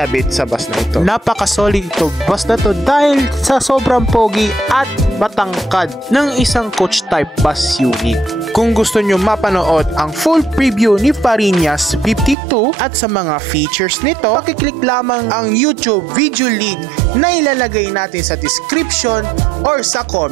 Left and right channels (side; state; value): left; drops out; at 12.4 s